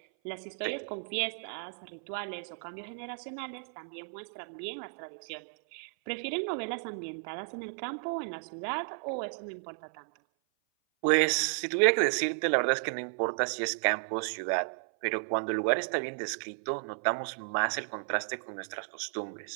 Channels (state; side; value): silent; left; 56 dB below the other